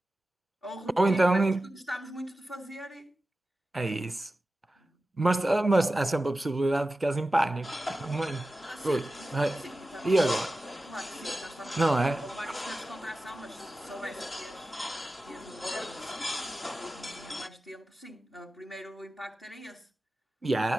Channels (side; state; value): both; normal; correlation 0.94